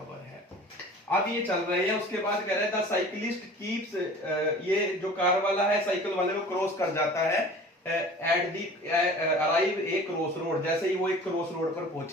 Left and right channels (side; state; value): both; normal; correlation 0.43